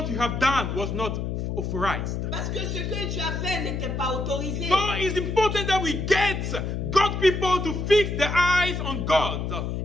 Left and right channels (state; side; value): noise; left; hum, 3 dB below the sound